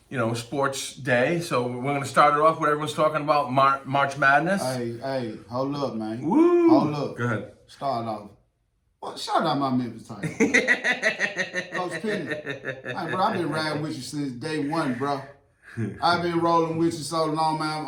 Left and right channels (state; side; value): identical; both; correlation 1.00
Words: sports day. So we're gonna start it off with everyone's talking about March Madness. Hey, hold up, man. Woo! Hold up. Go ahead. Start off. Well, shout out my Memphis Tigers. Coach Penny. Hey, bro, I've been riding with you since day one, bro. I've been rolling with you so long, man.